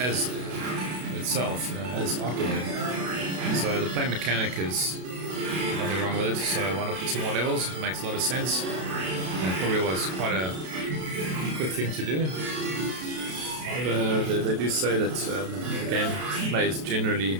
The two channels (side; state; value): left; late; 32 ms